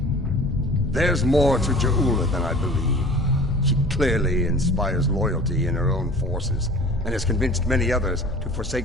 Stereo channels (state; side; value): normal; both; correlation 0.43